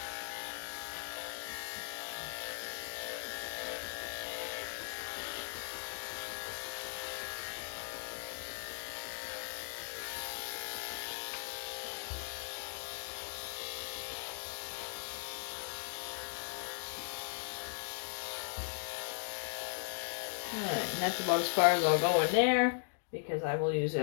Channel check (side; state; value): right; silent; digital silence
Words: Alright, and that's about as far as I'll go in there because I will use